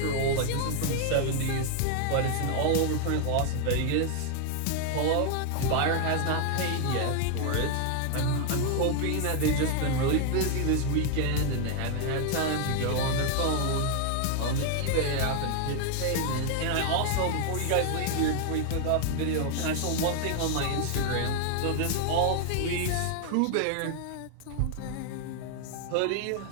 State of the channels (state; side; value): different; both; correlation 0.00